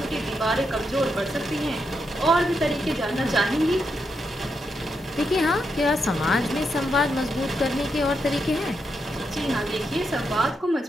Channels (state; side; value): normal; both; correlation 0.83